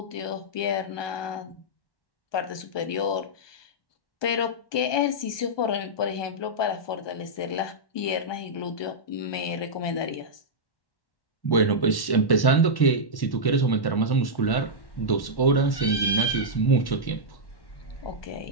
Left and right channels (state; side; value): late; right; 1.1 ms